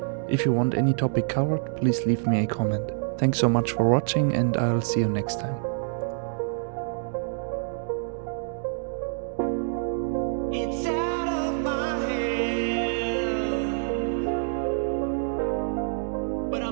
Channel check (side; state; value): left; silent; digital silence